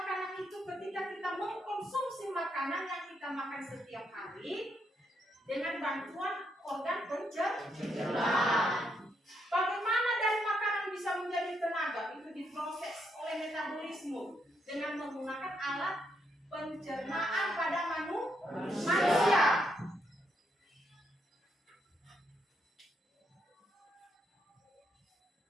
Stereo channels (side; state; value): both; normal; correlation 0.77